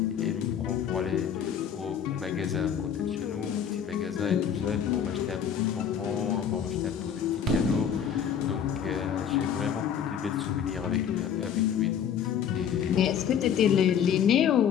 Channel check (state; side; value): quieter; right; 8.4 dB